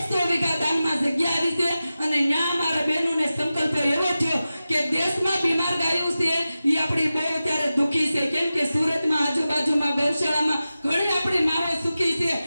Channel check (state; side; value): inverted; both; correlation -0.94